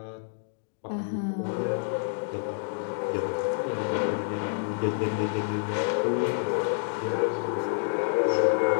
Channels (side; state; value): right; silent; digital silence